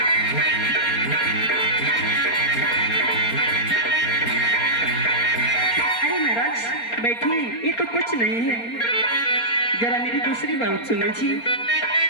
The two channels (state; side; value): late; right; 4.3 ms